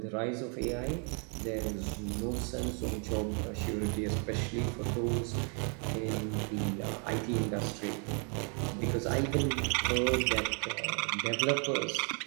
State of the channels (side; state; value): left; quieter; 38.3 dB